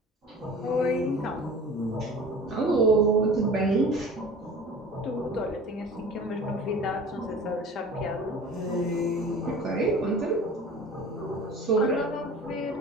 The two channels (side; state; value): both; normal; correlation 0.41